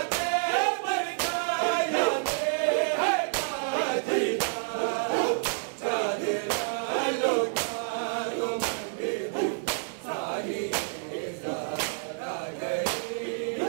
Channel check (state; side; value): silent; left; 59 dB below the other